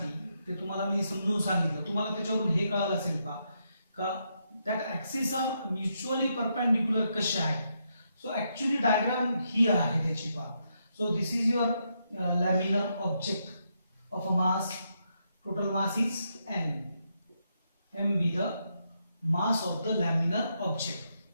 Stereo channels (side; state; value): both; inverted; correlation -0.80